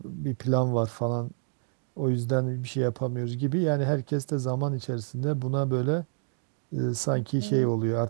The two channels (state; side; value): silent; left; digital silence